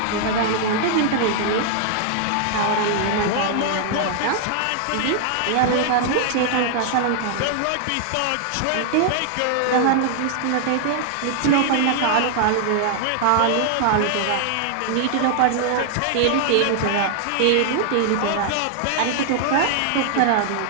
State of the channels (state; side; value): different; both; correlation 0.00